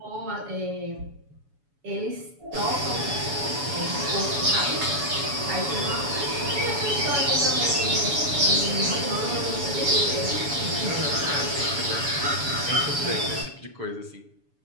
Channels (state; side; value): late; left; 7.0 ms